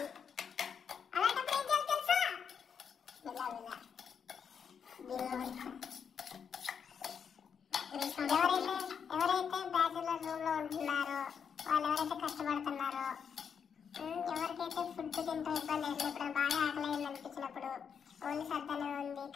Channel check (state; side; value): quieter; right; 7.1 dB